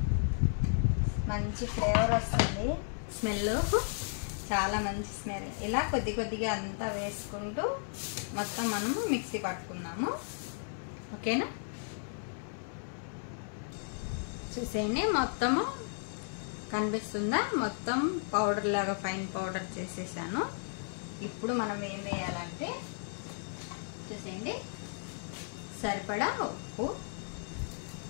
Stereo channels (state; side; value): silent; right; digital silence